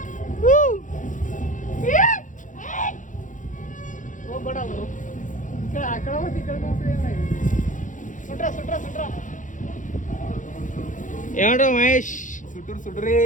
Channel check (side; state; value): right; late; 0.37 ms